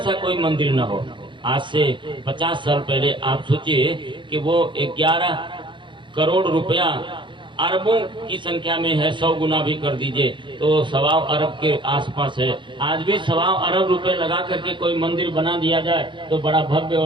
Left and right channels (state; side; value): late; left; 0.23 ms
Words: कोई मंदिर न हो। आज से 50 साल पहले आप सोचिए कि वो 11 करोड़ रुपया अरबों की संख्या में है, 100 गुना भी कर दीजिए तो 1.25 अरब के आसपास है। आज भी 1.25 अरब रुपए लगा करके कोई मंदिर बना दिया जाए तो बड़ा भव्य